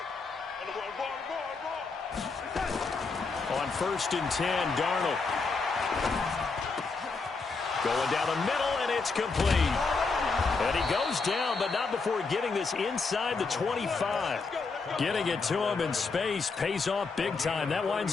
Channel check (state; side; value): quieter; right; 4.3 dB